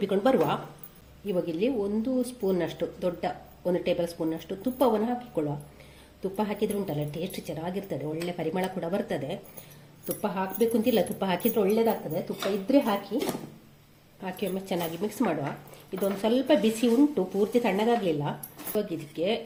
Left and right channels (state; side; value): identical; both; correlation 1.00